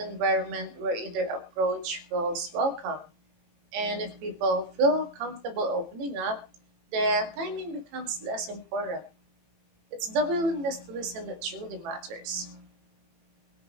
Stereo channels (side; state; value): left; late; 18 ms